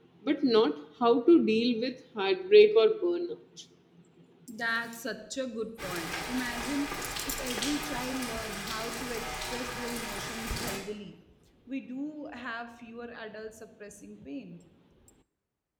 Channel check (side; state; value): both; identical; correlation 1.00